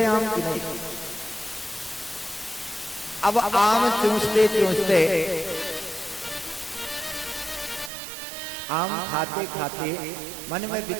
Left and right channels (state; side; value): drops out; left; at 7.9 s